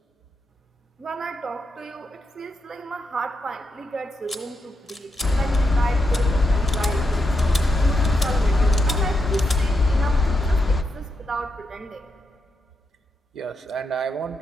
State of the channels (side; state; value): both; normal; correlation 0.84